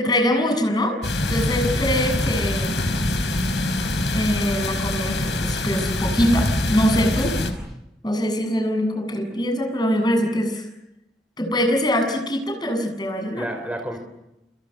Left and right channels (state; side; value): normal; both; correlation 0.70